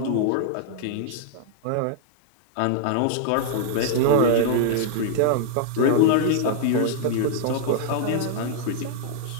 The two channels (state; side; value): different; both; correlation -0.01